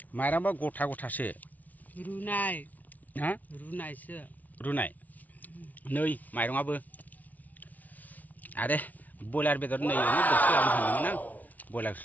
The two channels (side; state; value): right; late; 0.076 ms